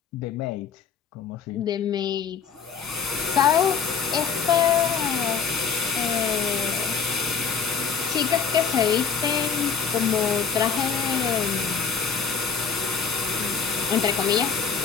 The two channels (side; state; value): right; quieter; 6.2 dB